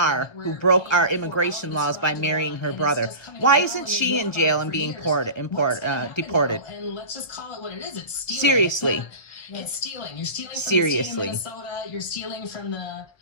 who broke our immigration laws by marrying her brother. Why isn't she in jail and being deported? And let's just call it what it is. It's stealing. Seriously. It's stealing. You're stealing from Seriously. the state of Minnesota. You're stealing from the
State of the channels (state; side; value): late; right; 1.1 ms